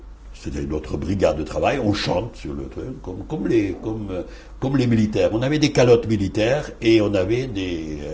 C'était notre brigade de travail, on chante sur le truc, comme les militaires. On avait des calottes militaires, et on avait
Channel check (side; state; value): both; identical; correlation 1.00